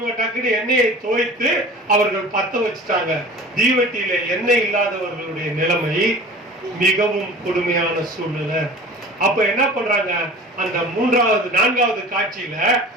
டக்குனு எண்ணெயை தோய்த்து அவர்கள் பத்த வச்சுட்டாங்க. தீவெட்டியில எண்ணெய் இல்லாதவர்களுடைய நிலைமை மிகவும் கொடுமையான சூழ்நிலை. அப்ப என்ன பண்றாங்க? அந்த 3வது 4வது காட்சியில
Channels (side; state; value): both; normal; correlation 0.41